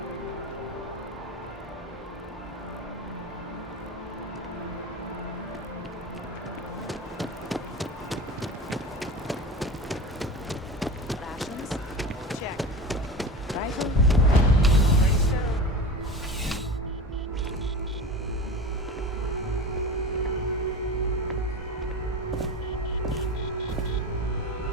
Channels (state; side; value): normal; both; correlation 0.31